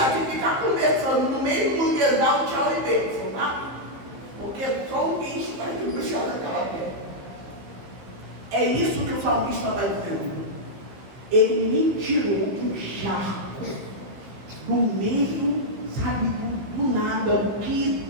se ficar conversando no meio do manguezal, tchau e bênção, tá? Porque só um bicho vai puxar naquela terra. É isso que o salmista está dizendo. Ele me tirou do charco, do meio, sabe, do nada, o que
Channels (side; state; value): left; late; 15 ms